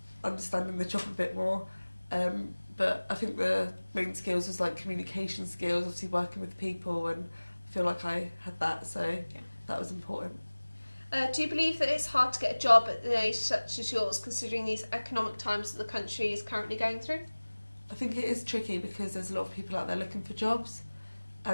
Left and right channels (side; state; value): both; inverted; correlation -1.00